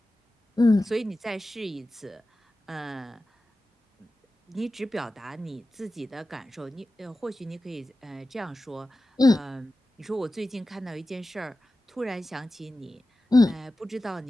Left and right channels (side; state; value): both; normal; correlation 0.94